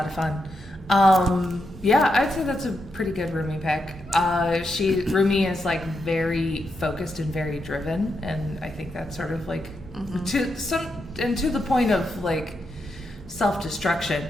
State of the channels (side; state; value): both; normal; correlation 0.84